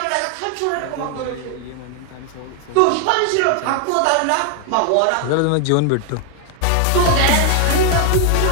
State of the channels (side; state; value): both; different; correlation 0.00